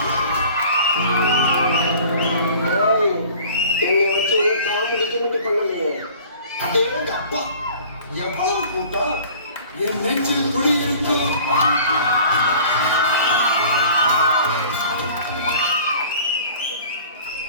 என்னை வச்சு உள்ள காமெடி கிமெடி பண்ணலையே. அதே அப்பா எவ்வளவு கூட்டம் என் நெஞ்சில் குடியிருக்கு.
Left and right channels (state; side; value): inverted; both; correlation -0.47